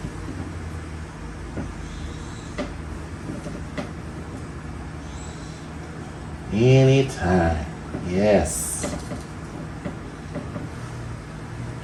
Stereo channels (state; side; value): identical; both; correlation 1.00